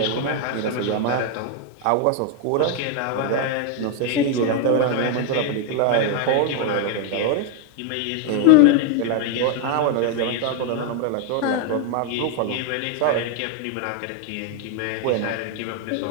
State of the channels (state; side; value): different; both; correlation 0.01